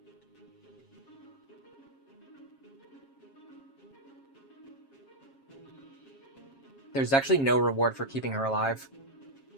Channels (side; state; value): right; late; 7.4 ms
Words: There's actually no reward for keeping her alive.